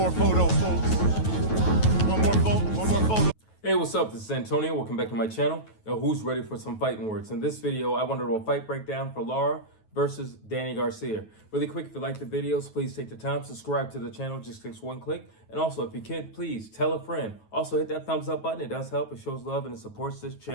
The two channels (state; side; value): late; right; 9.3 ms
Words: photo, folks. One more photo. Hey, what's up? This is Antonio. Welcome back to my channel. Now, who's ready for some fighting words? In this video, I want to do a fight breakdown for Lara versus Danny Garcia. Really quick, if you like the videos, please take the time, subscribe to the channel, just takes one click. And also, if you can, please tell a friend. Also, hit that thumbs up button. It does help. It shows love and it supports this